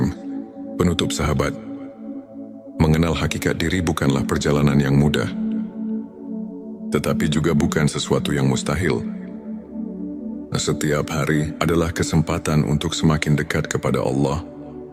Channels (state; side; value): identical; both; correlation 1.00